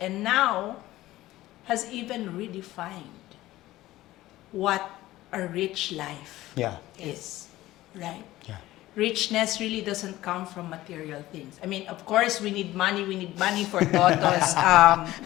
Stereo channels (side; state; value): right; quieter; 16.3 dB